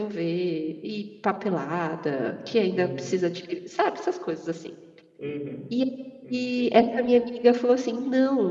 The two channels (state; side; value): identical; both; correlation 1.00